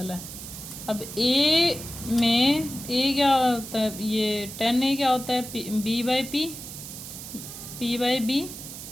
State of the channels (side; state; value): right; noise; hiss, 11 dB below the sound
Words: है। अब A में A क्या होता है, ये tan A क्या होता है, B/P, P/B,